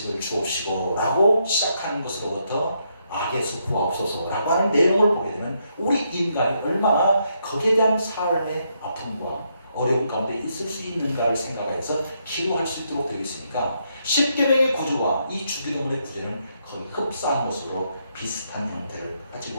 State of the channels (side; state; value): both; inverted; correlation -0.77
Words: 주옵시고 라고 시작하는 것으로부터 악에서 구하옵소서 라고 하는 내용을 보게 되면 우리 인간이 얼마나 거기에 대한 삶의 아픔과 어려움 가운데 있을 수 있는가를 생각해서 기도할 수 있도록 되어 있으니까 십계명의 구조와 이 주기도문의 구조는 거의 흡사한 것으로 비슷한 형태를